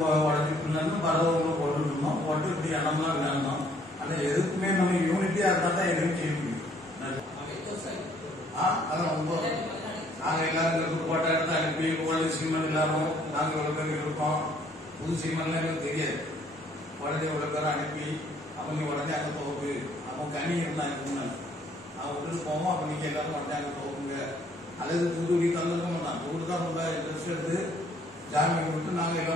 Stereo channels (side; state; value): both; normal; correlation 0.63